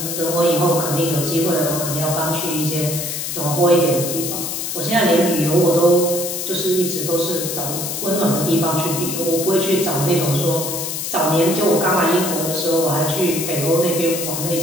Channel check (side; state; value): left; noise; hiss, 4 dB below the sound